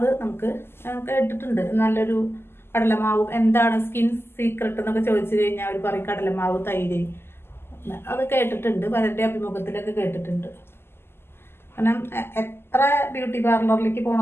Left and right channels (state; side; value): late; right; 0.12 ms